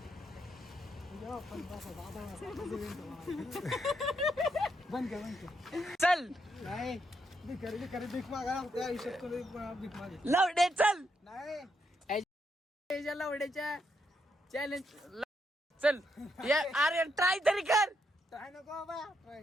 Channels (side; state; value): both; normal; correlation 0.78